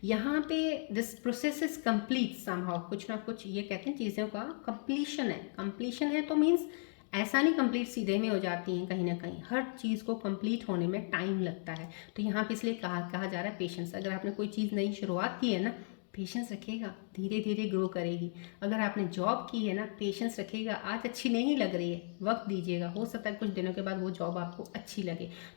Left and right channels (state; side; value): silent; right; 54 dB below the other